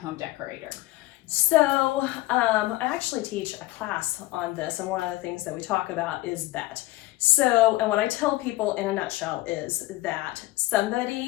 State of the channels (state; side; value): quieter; right; 18.4 dB